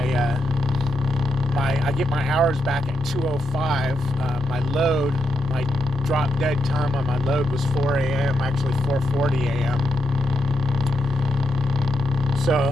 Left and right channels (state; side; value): normal; both; correlation 0.83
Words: I get my hours back at 2:05. My drop dead time on my load was 4 a.m., actually 4:40 a.m. So